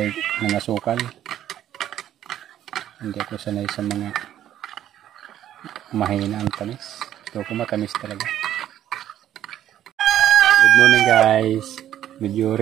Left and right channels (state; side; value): quieter; left; 11.5 dB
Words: ng asukal. Hindi ako sanay sa mga mahina ang tamis. Ito ko matamis talaga. Good morning guys. Medyo